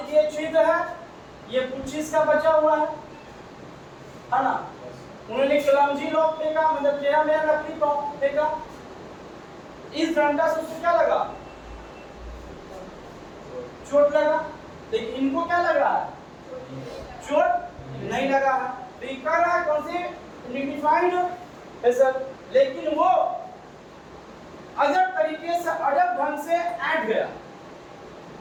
छिद्र है, ये पुच्छिस का बचा हुआ है ना। उन्होंने क्लमजी लॉक फेंका, मतलब टेढ़ा मेढ़ा लकड़ी को फेंका। इस डंडा से उसको क्या लगा, चोट लगा, लेकिन इनको क्या लग रहा है, चोट नहीं लगा है। तो ये कर रहा है कौन से डिफाइंड हैसल, लेकिन वो अजब तरीके से, अजब ढंग से ऐड गया।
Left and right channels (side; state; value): both; identical; correlation 1.00